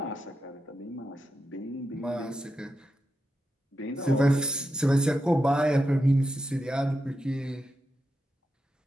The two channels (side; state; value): both; normal; correlation 0.87